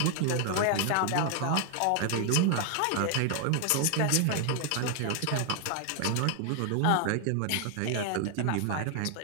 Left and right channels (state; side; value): different; both; correlation 0.00